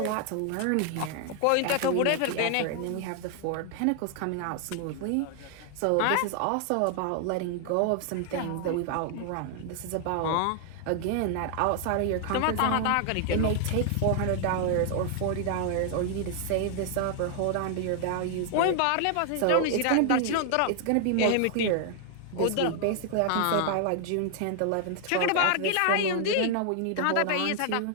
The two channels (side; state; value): both; different; correlation 0.00